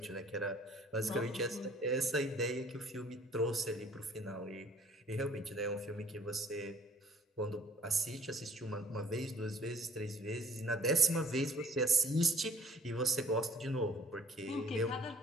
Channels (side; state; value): both; normal; correlation 0.57